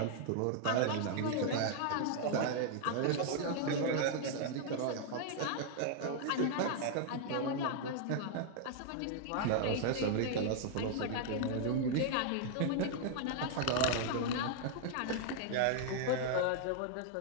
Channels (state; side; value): different; both; correlation -0.01